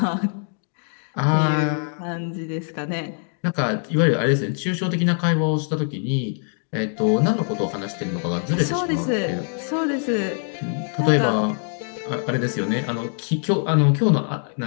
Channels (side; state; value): right; silent; 63 dB below the other